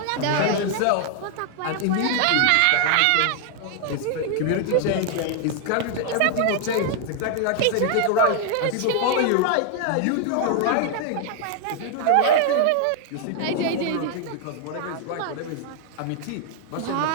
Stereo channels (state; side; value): different; both; correlation 0.00